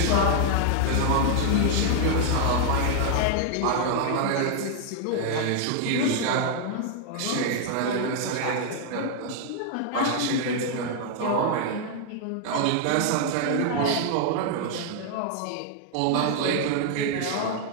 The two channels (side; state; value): both; different; correlation 0.00